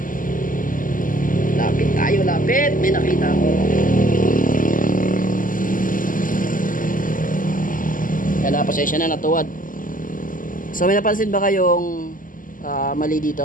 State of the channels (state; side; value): late; right; 0.39 ms